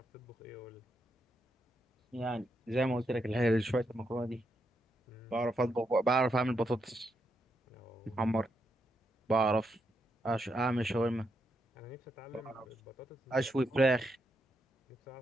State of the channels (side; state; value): both; normal; correlation 0.81